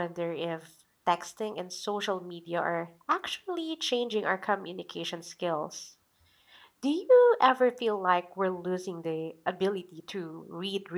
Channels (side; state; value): both; identical; correlation 1.00